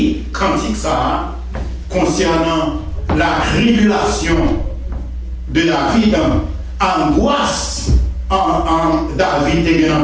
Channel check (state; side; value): identical; both; correlation 1.00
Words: cantique ça concernant la tribulation de David, angoisse en David et